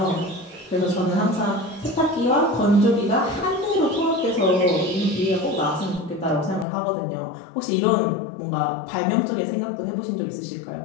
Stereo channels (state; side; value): drops out; right; at 6.7 s